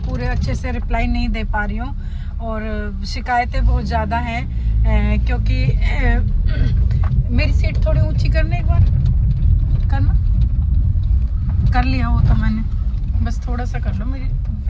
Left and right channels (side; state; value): both; identical; correlation 1.00